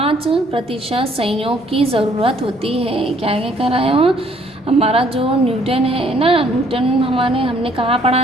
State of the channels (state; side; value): normal; both; correlation 0.63